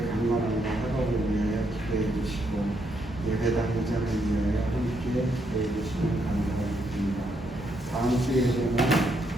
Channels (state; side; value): normal; both; correlation 0.76